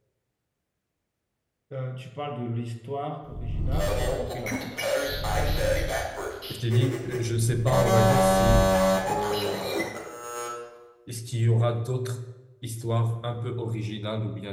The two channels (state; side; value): identical; both; correlation 1.00